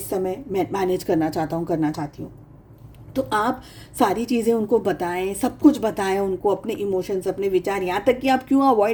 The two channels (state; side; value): identical; both; correlation 1.00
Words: समय मैनेज करना चाहता हूँ, करना चाहती हूँ। तो आप सारी चीज़ें उनको बताएं, सब कुछ बताएं उनको, अपने इमोशंस, अपने विचार, यहाँ तक कि आप क्यों